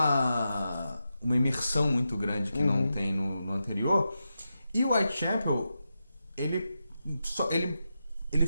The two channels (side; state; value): both; inverted; correlation -0.88